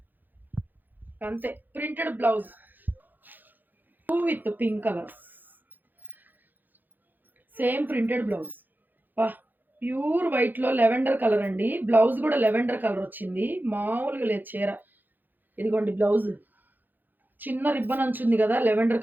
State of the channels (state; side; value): late; left; 0.087 ms